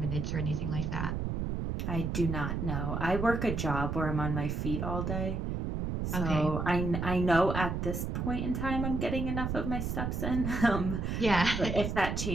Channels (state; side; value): noise; right; rumble, 2 dB below the sound